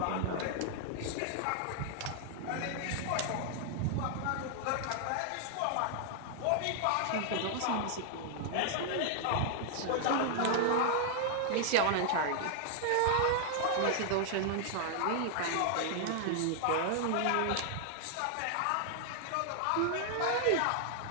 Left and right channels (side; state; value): both; different; correlation 0.00